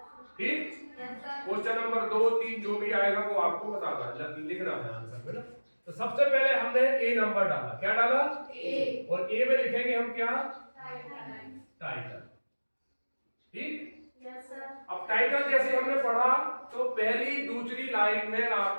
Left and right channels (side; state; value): both; inverted; correlation -1.00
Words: ठीक। क्वेश्चन नंबर 2, 3 जो भी आएगा वो आपको बताना है, लिखना है आंसर में ना। तो सबसे पहले हमने ए नंबर डाला। क्या डाला? ए। और ए में लिखेंगे हम क्या? टाइटल। ठीक। अब टाइटल जैसे हमने पढ़ा तो पहली दूसरी लाइन में